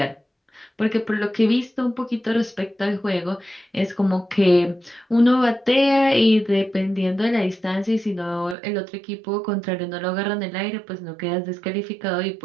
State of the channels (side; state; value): left; drops out; at 8.6 s